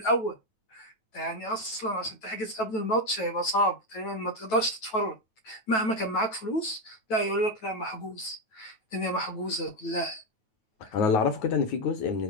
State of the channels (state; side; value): late; right; 9.2 ms